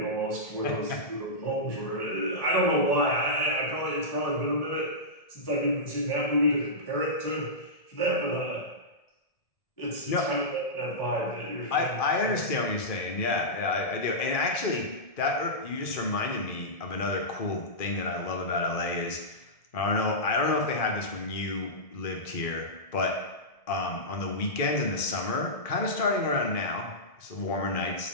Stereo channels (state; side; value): late; right; 1.7 ms